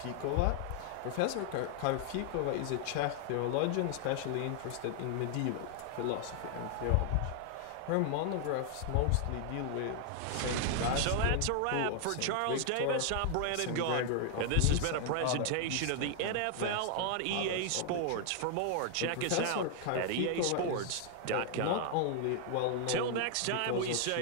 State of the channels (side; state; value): both; different; correlation 0.00